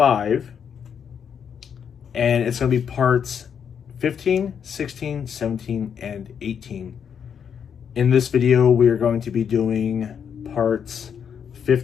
And it's going to be parts 15, 16, 17, and 18. In this video, we are going to be doing parts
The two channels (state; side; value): quieter; right; 7.6 dB